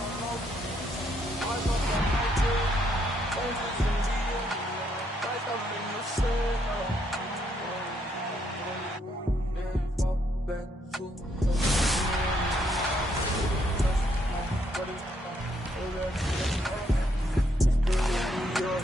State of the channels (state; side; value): normal; both; correlation 0.73